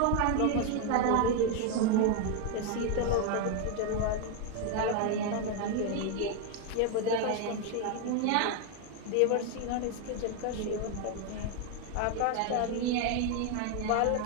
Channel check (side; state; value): both; different; correlation 0.01